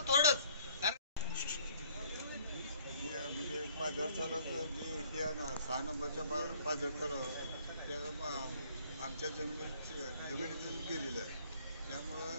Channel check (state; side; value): inverted; both; correlation -0.60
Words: थोडंच, म्हणजे पाझर तलाव जे हे आहे ना 6 नंबरच्या पाझर तलाव त्या आमच्या जमिनीतून केलेलं आहे,